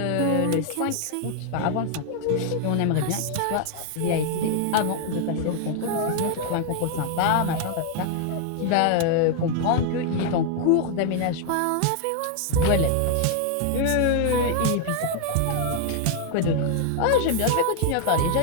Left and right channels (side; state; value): both; different; correlation 0.00